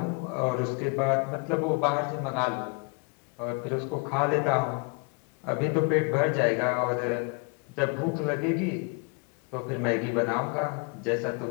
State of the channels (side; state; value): right; quieter; 33.2 dB